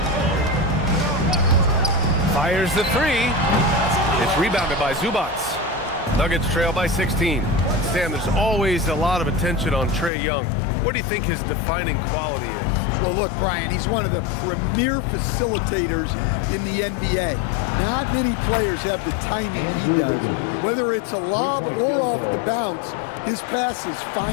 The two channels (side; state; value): right; drops out; at 10.1 s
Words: Fires the three. It's rebounded by Zubac. Nuggets trail by 16. Stan, there's always a lot of attention on Trae Young. What do you think his defining quality is? Well, look, Brian, he's one of the premier facilitators in the NBA. Not many players have the timing he does. Whether it's a lob or off the bounce, his passes